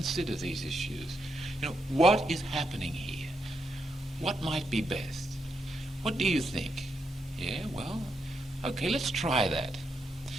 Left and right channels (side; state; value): both; normal; correlation 0.82